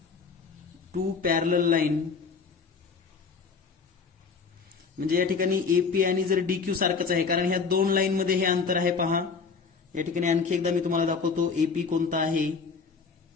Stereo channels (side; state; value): right; quieter; 5.2 dB